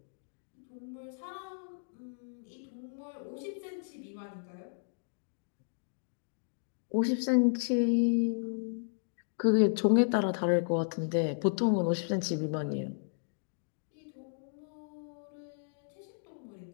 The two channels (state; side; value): silent; right; digital silence